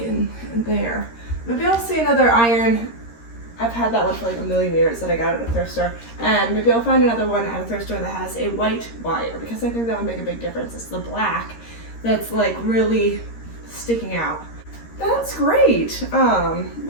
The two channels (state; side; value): late; right; 13 ms